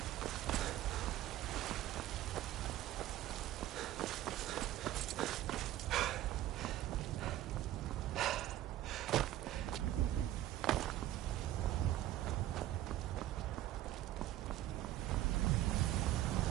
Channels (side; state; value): left; quieter; 13.8 dB